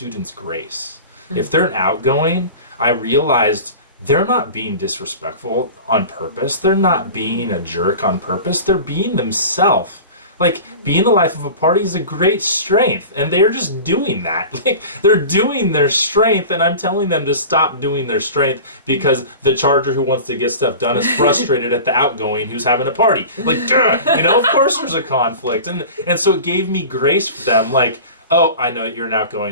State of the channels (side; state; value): both; inverted; correlation -0.36